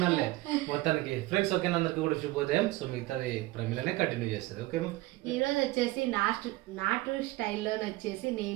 మొత్తానికి. ఫ్రెండ్స్ ఓకే, అందరికి కూడా శుభోదయం. సో మిగతాది ప్రమీలనే కంటిన్యూ చేస్తుంది. ఓకే, ఈ రోజు వచ్చేసి నాటు స్టైల్లో వచ్చేసి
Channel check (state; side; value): quieter; left; 19.0 dB